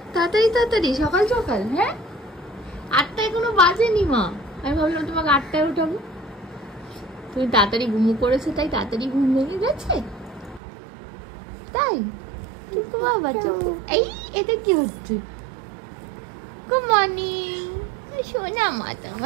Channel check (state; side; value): drops out; left; at 10.6 s